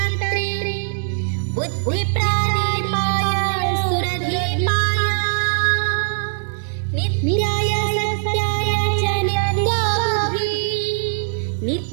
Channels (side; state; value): left; silent; digital silence